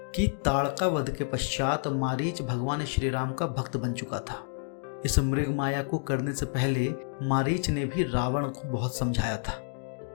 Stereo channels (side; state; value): right; silent; digital silence